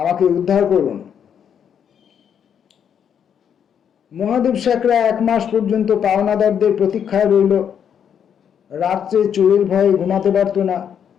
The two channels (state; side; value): quieter; right; 8.2 dB